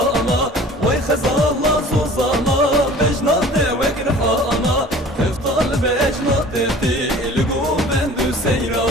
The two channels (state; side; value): normal; both; correlation 0.46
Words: وای خزالا سوزالا بجنات وکر حالا تفضل بجنات دلگو بندو